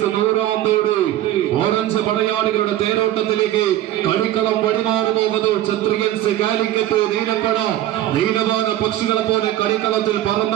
100 ഓറഞ്ച് പടയാളികളുടെ തേരോട്ടത്തിലേക്ക് കളിക്കളം വഴിമാറുന്നു. ക്ഷത്രിയൻസ് കാലിക്കറ്റ് നീലപ്പട നീലവാന പക്ഷികളെ പോലെ കളിക്കളത്തിൽ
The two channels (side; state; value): left; quieter; 13.5 dB